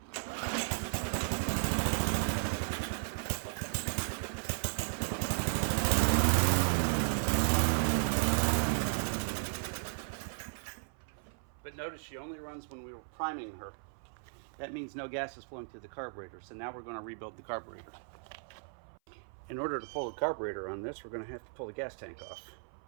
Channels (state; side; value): silent; left; 54 dB below the other